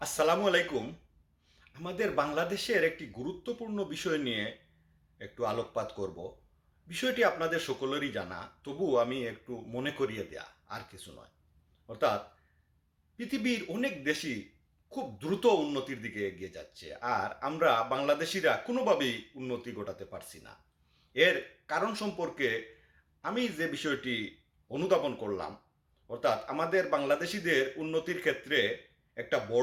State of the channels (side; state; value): both; identical; correlation 1.00